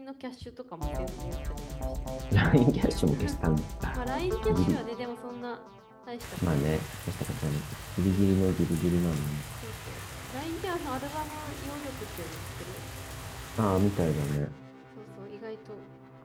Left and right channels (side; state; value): both; identical; correlation 1.00